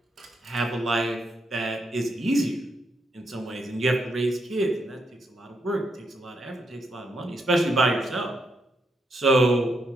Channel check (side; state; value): both; normal; correlation 0.79